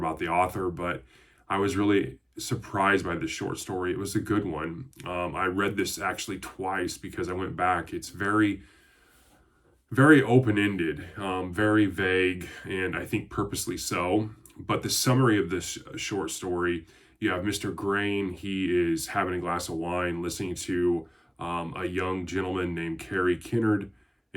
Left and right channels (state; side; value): identical; both; correlation 1.00